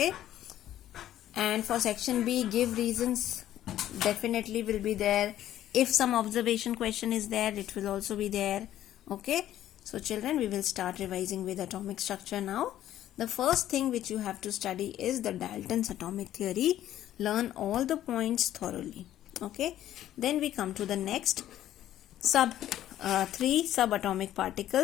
And for section B, give reasons, definitely will be there. If some observation question is there, it will also be there. Okay. So children, we will start revising with atomic structure now. The first thing which you have to study is the Dalton's atomic theory. Learn all the points thoroughly. Okay. Then we come to the next three subatomic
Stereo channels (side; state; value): right; quieter; 12.5 dB